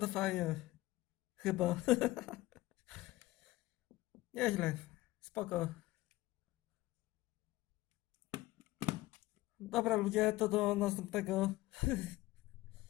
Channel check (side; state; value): right; quieter; 18.3 dB